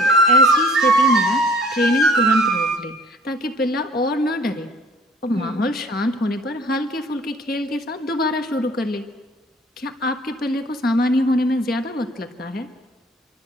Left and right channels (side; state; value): both; normal; correlation 0.53